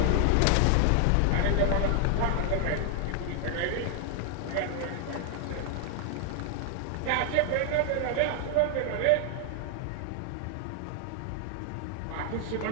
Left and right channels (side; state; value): both; different; correlation 0.00